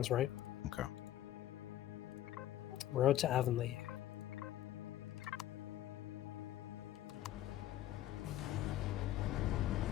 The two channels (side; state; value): right; quieter; 13.5 dB